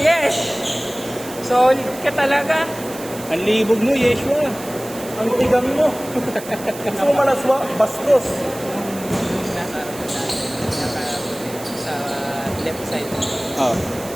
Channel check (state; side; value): noise; right; hiss, 15 dB below the sound